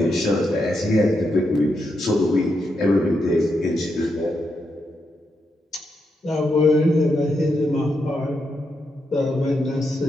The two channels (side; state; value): both; normal; correlation 0.83